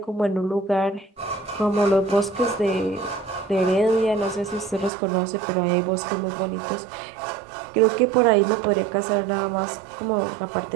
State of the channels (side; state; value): left; drops out; at 4.9 s